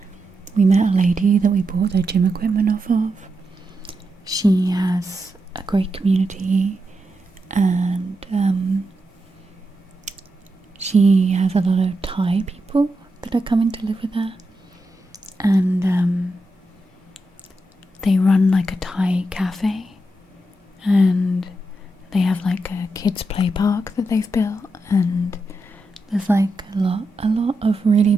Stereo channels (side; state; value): both; normal; correlation 0.86